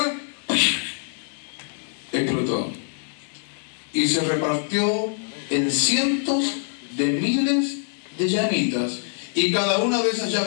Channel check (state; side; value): silent; right; digital silence